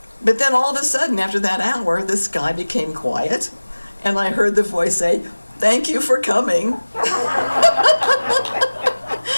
But then all of a sudden, after that hour, the sky became quiet. And I heard the voice say, "Thank you for coming."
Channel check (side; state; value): both; inverted; correlation -1.00